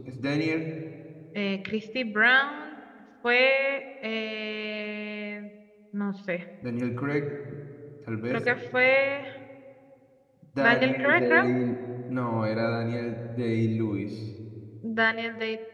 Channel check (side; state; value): both; identical; correlation 1.00